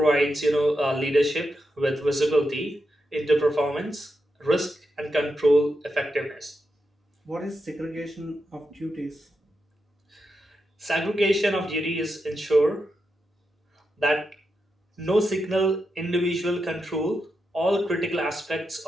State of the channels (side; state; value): both; normal; correlation 0.86